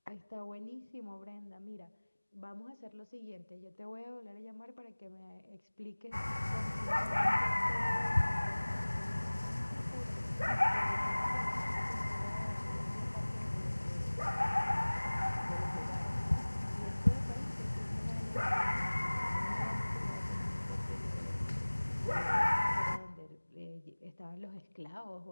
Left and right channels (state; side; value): inverted; both; correlation -1.00